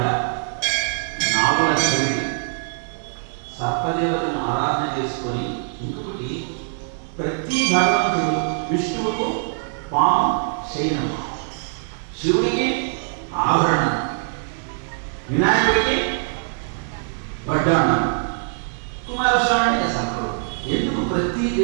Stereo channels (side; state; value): left; silent; digital silence